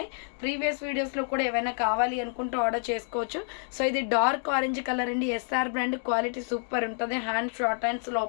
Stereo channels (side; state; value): right; silent; 59 dB below the other